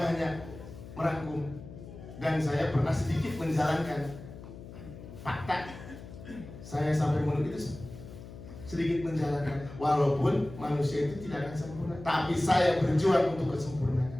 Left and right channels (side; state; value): left; noise; hum, 14 dB below the sound